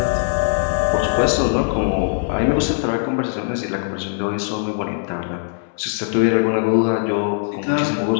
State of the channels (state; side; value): silent; right; 66 dB below the other